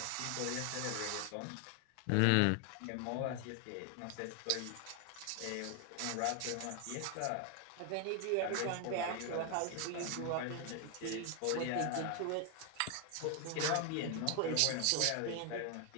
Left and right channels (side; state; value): both; different; correlation 0.00